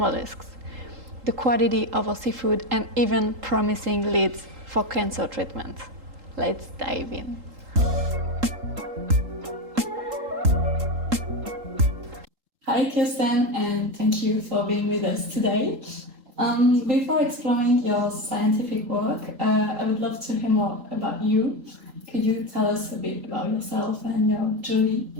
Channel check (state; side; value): late; left; 3.8 ms